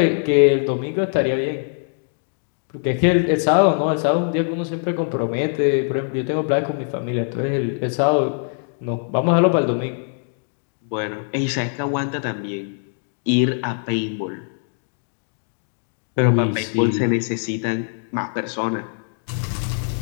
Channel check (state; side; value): silent; right; digital silence